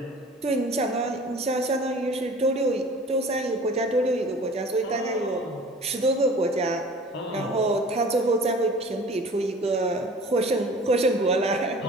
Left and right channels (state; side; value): normal; both; correlation 0.44